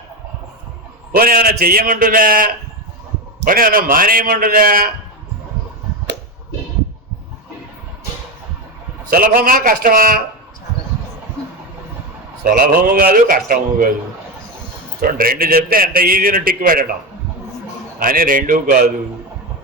పోనీ ఏమైనా చెయ్యమంటుందా? పోనీ ఏమైనా మానేయమంటుందా? సులభమా కష్టమా? సులభము కాదు, కష్టము కాదు. చూడండి, 2 చెప్తే ఎంత ఈజీని టిక్ పెట్టడం అని 2 కాదు.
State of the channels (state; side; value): normal; both; correlation 0.15